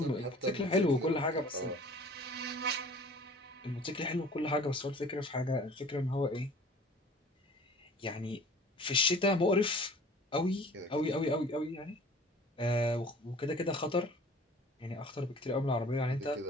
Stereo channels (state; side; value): normal; both; correlation 0.47